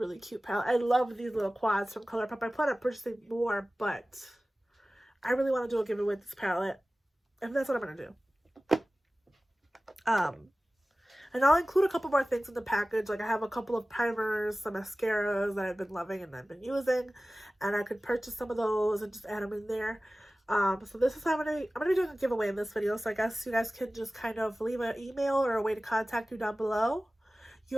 cute palette. I love these little quads from Colourpop. I plan on purchasing more, but I really want to do a giveaway with this palette. And that's what I'm going to do. And I'll include a couple more things in the package. Like I have a couple of primers, some mascaras that I've been loving and I've been using. And I could purchase some of those and just add them in there. So this is how I'm gonna be doing a giveaway in this video. So I guess you guys can just kind of leave an email or a way to contact you down below.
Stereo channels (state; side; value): normal; both; correlation 0.97